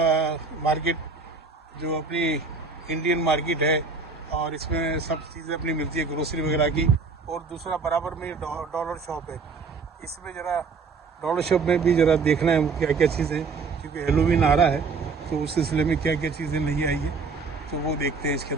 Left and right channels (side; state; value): left; quieter; 4.6 dB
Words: मार्केट, जो अपनी इंडियन मार्केट है और इसमें सब चीज़ें अपनी मिलती है, ग्रोसरी वगैरह की। और दूसरा बराबर में डॉलर शॉप है। इसमें ज़रा डॉलर शॉप में भी ज़रा देखना है क्या क्या चीज़ें, क्योंकि हेलोवीन आ रहा है तो उस सिलसिले में क्या क्या चीज़ें नहीं आई है, तो वो देखते हैं, इसके